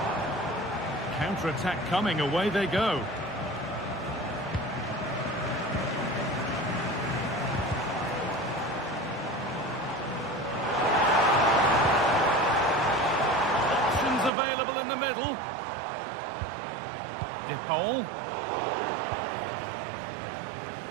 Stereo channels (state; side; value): drops out; left; at 14.3 s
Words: Counter-attack coming, away they go. Options available in the middle. De Paul.